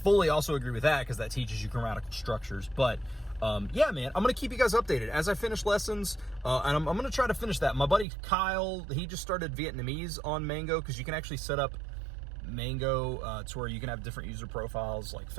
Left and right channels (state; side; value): drops out; left; at 8.1 s